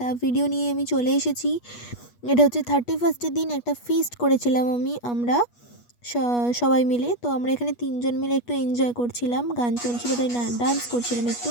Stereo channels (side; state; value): right; late; 8.3 ms